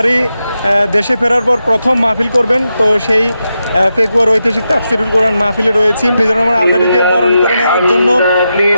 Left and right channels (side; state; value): both; inverted; correlation -0.88